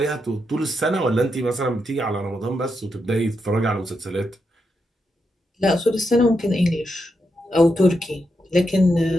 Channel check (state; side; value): normal; both; correlation 0.84